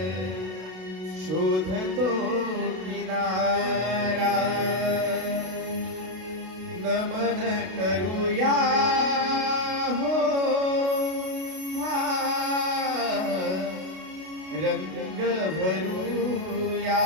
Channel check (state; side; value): late; left; 32 ms